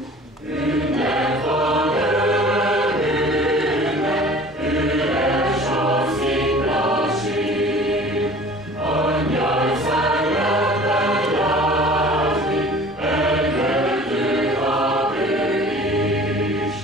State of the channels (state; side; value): normal; both; correlation 0.45